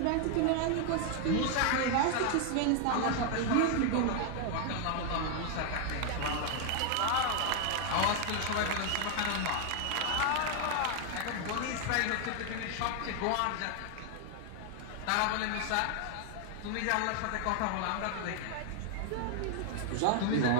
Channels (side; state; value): both; different; correlation 0.00